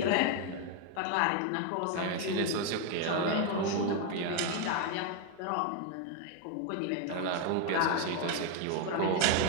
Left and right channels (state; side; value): different; both; correlation 0.01